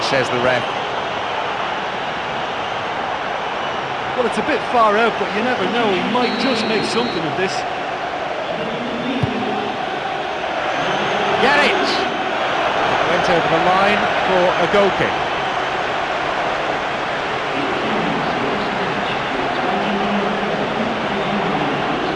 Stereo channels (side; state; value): both; identical; correlation 1.00